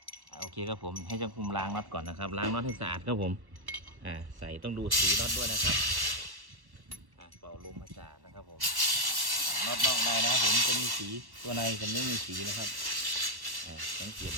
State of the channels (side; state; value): left; late; 1.1 ms